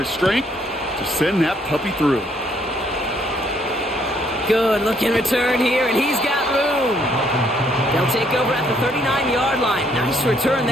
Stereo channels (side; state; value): both; normal; correlation 0.68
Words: strength, to send that puppy through. Good looking return here, and he's got room. They'll take over at the 39-yard line. Nice return